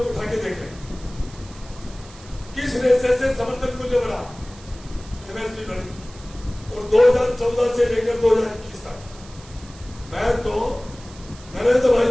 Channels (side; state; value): right; noise; hiss, 21 dB below the sound